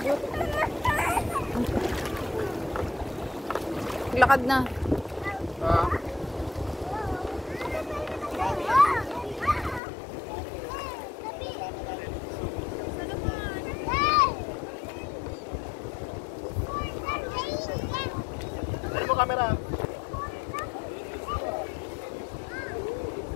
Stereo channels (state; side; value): drops out; right; at 9.8 s